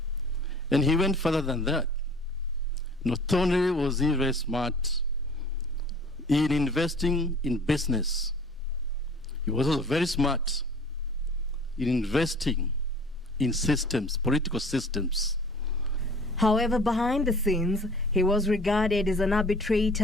And he went further than that. Not only was he very smart in investing in business, he was also very smart in investing in systems, political systems. However, behind the scenes, he was regarded as an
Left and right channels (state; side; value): normal; both; correlation 0.48